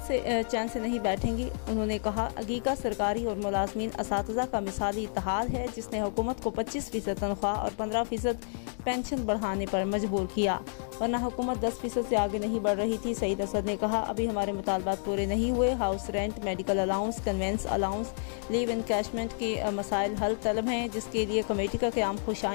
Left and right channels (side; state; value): right; silent; digital silence